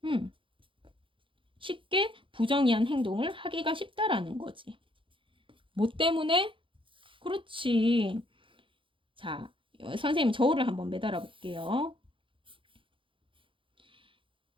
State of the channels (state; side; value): late; left; 0.25 ms